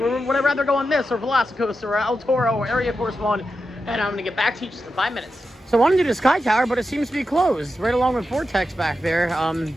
I rather go on this or Velocicoaster or El Toro or Area Force One? And I'm going to get back to you just in 5 minutes. So I wanted to do the Sky Tower, but it seems to be closed, right along with Vortex back there.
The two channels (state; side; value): normal; both; correlation 0.89